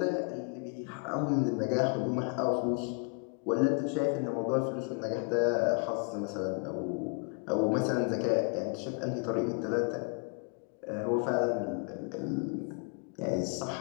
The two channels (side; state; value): right; quieter; 36.8 dB